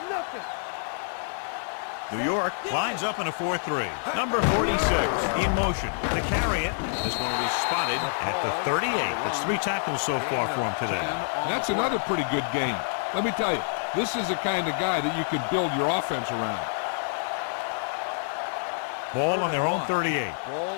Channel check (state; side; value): silent; right; digital silence